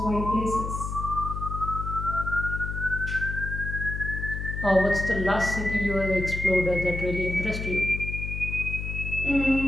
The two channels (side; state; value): left; noise; hum, 4 dB below the sound